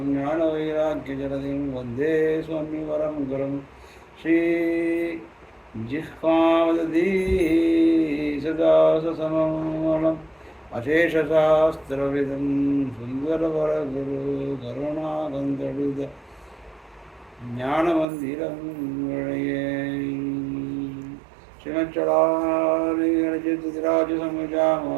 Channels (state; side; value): drops out; left; at 18.1 s